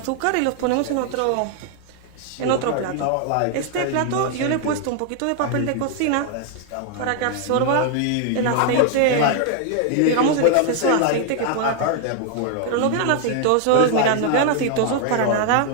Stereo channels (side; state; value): both; different; correlation 0.00